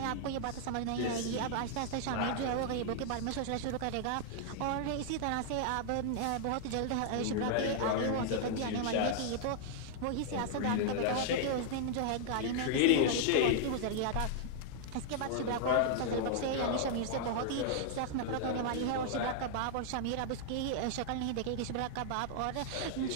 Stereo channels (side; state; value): both; different; correlation -0.01